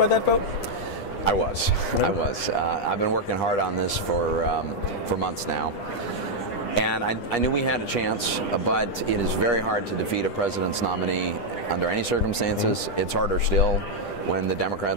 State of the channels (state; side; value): late; right; 10 ms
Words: that vote? I was. I've been working hard on this for months now. And I knew we had a chance, but it is very hard to defeat a president's nominee under any circumstances. It's harder still when the